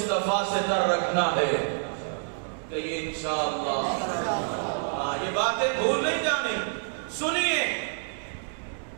سے تر رکھنا ہے کہ یہ انشاءاللہ یہ باتیں بھول نہیں جانی۔ سنیے،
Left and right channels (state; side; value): silent; left; digital silence